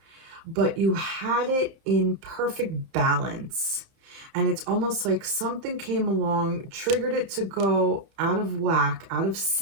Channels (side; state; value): left; late; 30 ms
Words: but you had it in perfect balance. And it's almost like something came along, triggered it to go out of whack, out of